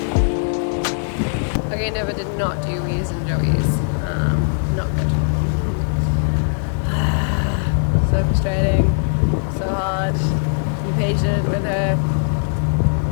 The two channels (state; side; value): silent; right; digital silence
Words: Okay, Nova did not do wheeze and jobbies. Not good. So frustrating, so hard. Be patient with her.